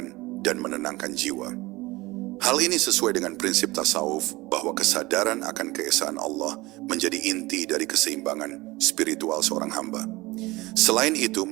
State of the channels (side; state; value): left; quieter; 20.9 dB